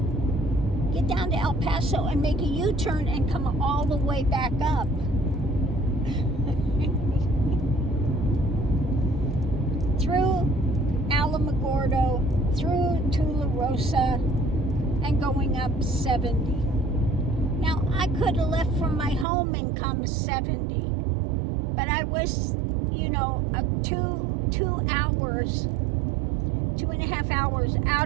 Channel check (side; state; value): left; drops out; at 19.2 s